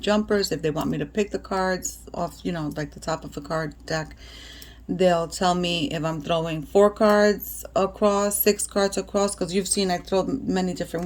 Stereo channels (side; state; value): both; identical; correlation 1.00